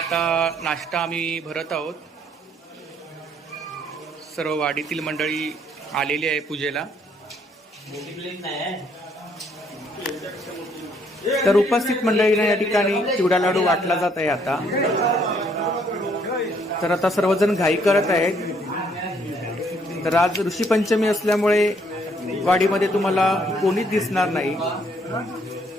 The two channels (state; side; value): normal; both; correlation 0.67